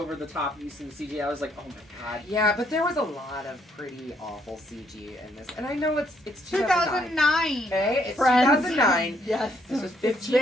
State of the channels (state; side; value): normal; both; correlation 0.70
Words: use of the CG. I was like, oh my god. Yeah, but there was a lot of pretty awful CG in this. And I know it's 2009. Okay? It's Friends. 2009. Yes. This was 15